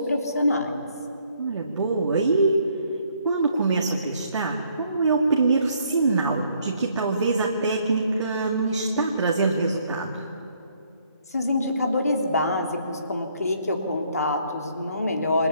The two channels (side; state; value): both; inverted; correlation -0.67